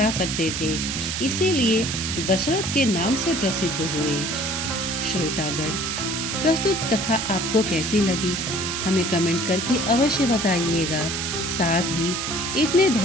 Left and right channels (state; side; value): noise; right; hiss, 3 dB below the sound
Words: सकते थे, इसीलिए दशरथ के नाम से प्रसिद्ध हुए। श्रोतागण, प्रस्तुत कथा आपको कैसी लगी हमें कमेंट करके अवश्य बताइएगा। साथ ही इतने